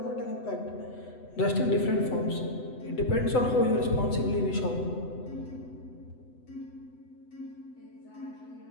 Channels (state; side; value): late; right; 8.0 ms